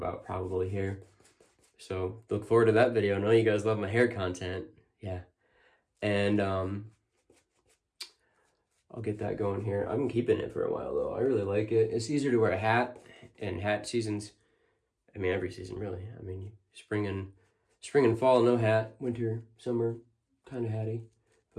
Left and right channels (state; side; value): identical; both; correlation 1.00